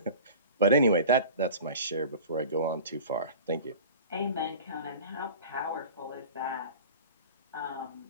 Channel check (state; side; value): inverted; both; correlation -0.38